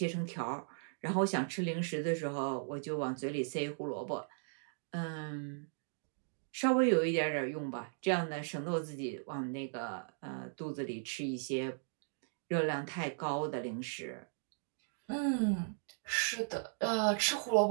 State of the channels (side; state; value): left; silent; digital silence